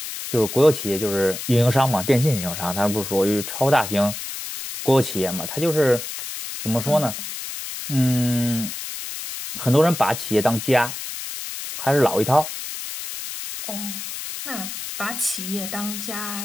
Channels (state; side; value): noise; left; hiss, 8 dB below the sound